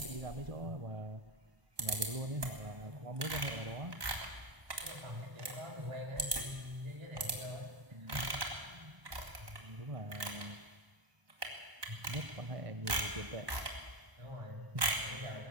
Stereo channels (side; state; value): left; late; 1.2 ms